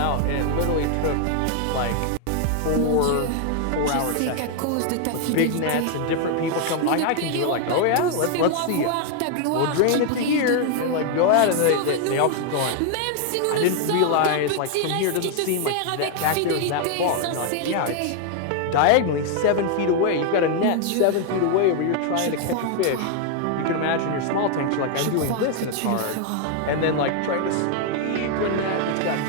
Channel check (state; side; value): different; both; correlation 0.00